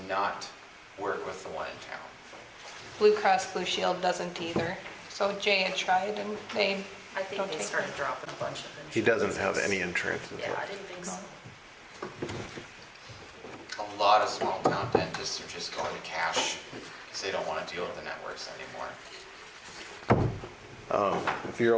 not work with the one in town. Blue Cross Blue Shield doesn't either. So Jay had tried and they I think don't they take started it. dropping a bunch of insurance. He doesn't have any insurance. is Yeah, what- I didn't think so. A lot of small town dentists are just going to cash because they don't want to deal with the networks anymore. If you're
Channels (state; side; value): identical; both; correlation 1.00